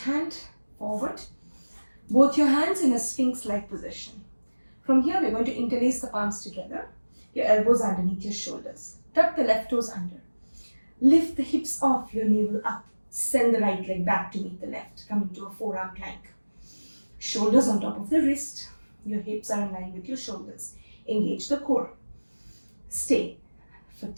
forward. Both your hands in a sphinx-like position. From here, we're going to interlace the palms together. Your elbows underneath your shoulders. Tuck the left toes under. Lift the hips off, your navel up. Send the right leg back to meet the left. Come into a forearm plank. Shoulders on top of the wrist. Your hips are in line with your shoulders. Engage the core. Stay for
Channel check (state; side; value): inverted; both; correlation -1.00